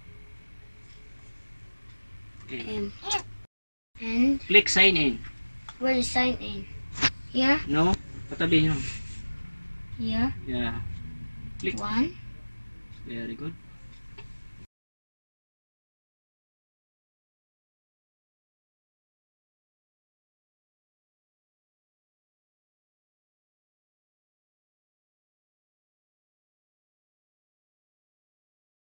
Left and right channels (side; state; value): both; inverted; correlation -1.00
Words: M. And Click sign in. where is sign in? Here. No? Patabi nyo. Here. Yeah. Click. 1. Very good.